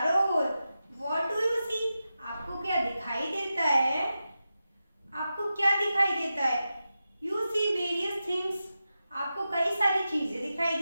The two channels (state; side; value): inverted; both; correlation -0.91